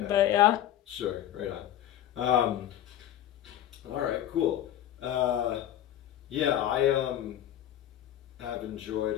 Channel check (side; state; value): right; quieter; 11.8 dB